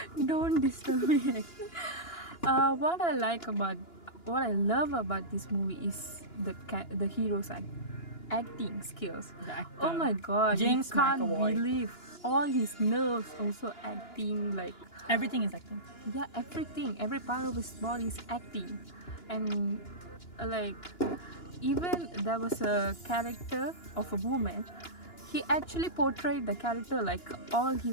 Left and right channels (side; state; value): right; late; 2.9 ms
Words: Don't disturb me. What I love about this movie is the hero's acting skills. The actor. Oh my god, James you can't McAvoy. believe all his nerves also acting, like, Everything is acting. yeah, every part of his body is acting. And like, even there was a character of a woman, he actually portrayed the character like all